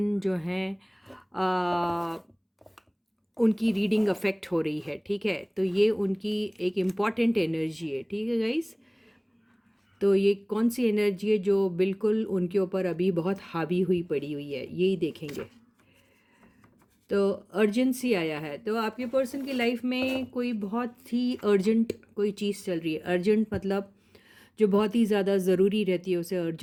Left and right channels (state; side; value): identical; both; correlation 1.00